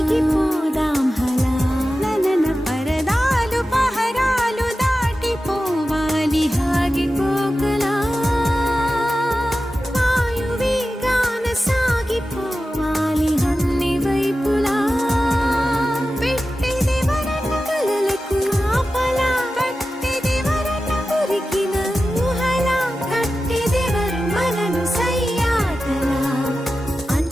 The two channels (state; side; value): normal; both; correlation 0.93